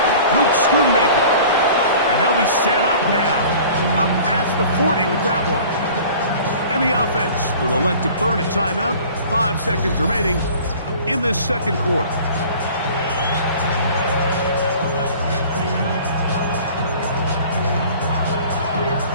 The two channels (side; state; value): both; inverted; correlation -0.46